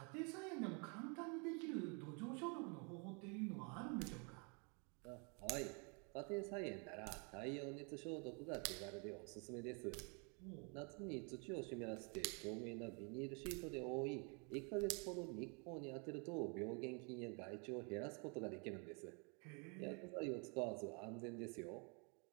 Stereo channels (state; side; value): quieter; left; 35.0 dB